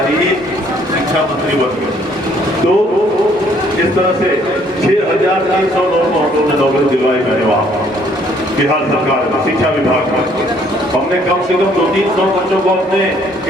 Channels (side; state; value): both; normal; correlation 0.63